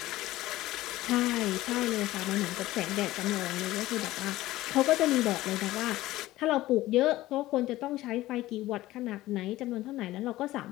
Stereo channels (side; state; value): right; quieter; 16.5 dB